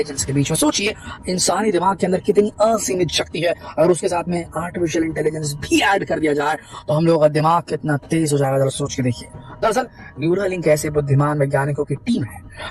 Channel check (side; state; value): both; identical; correlation 1.00